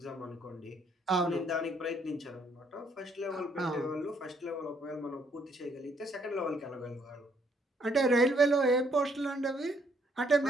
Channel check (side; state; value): both; normal; correlation 0.69